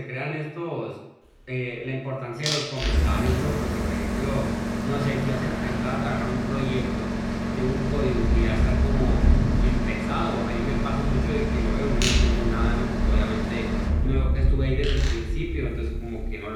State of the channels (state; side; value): identical; both; correlation 1.00